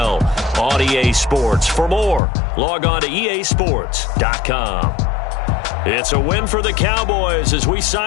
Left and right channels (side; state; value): right; drops out; at 2.2 s